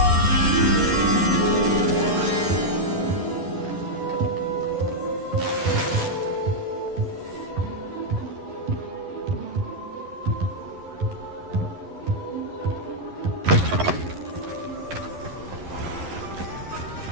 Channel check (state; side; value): late; left; 11 ms